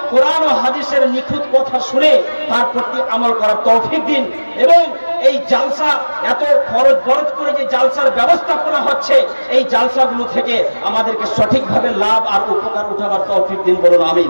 কোরআন ও হাদিসের নিখুঁত কথা শুনে তার প্রতি আমল করার তৌফিক দিন, এবং এই জালসা এত খরচ বরচ করে যে জালসার ব্যবস্থাপনা হচ্ছে, এই জালসাগুলো থেকে আমাদেরকে সঠিকভাবে লাভ আর উপকার উঠাবার তৌফিক দিন, বলুন আমিন।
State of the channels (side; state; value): both; inverted; correlation -1.00